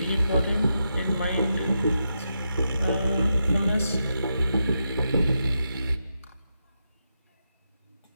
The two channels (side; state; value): both; inverted; correlation -0.85